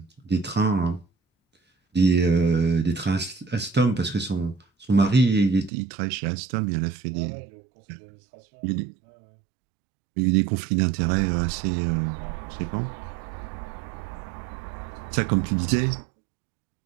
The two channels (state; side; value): drops out; left; at 5.7 s